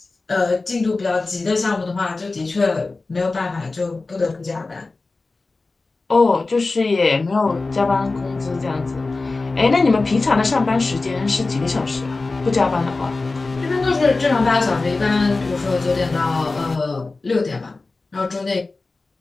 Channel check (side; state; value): right; quieter; 3.6 dB